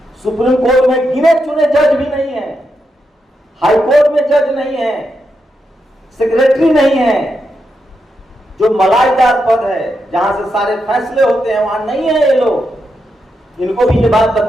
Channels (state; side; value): normal; both; correlation 0.84